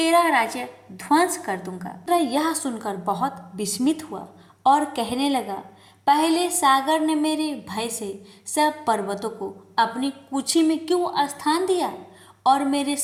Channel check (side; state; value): both; identical; correlation 1.00